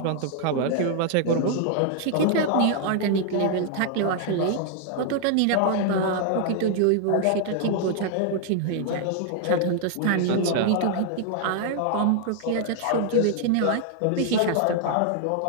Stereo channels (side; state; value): both; different; correlation 0.00